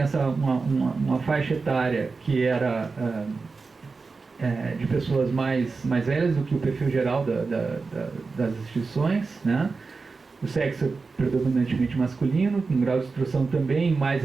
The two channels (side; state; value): left; quieter; 4.3 dB